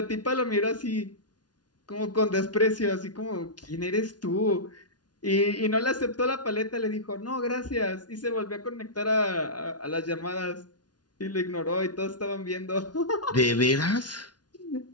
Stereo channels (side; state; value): right; late; 0.69 ms